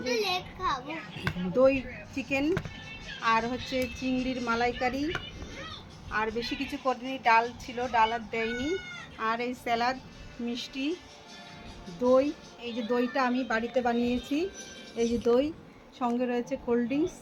দই চিকেন আর হচ্ছে চিংড়ির মালাইকারি, আর বেশি কিছু করিনি। ডাল ছিল, ডাল আর দেয়নি। আর এই স্যালাড, মিষ্টি, দই। এই যে দইটা আমি বাড়িতে বানিয়েছি। এই যে দই, সঙ্গে রয়েছে কোল্ড ড্রিঙ্কস,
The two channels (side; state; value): both; identical; correlation 1.00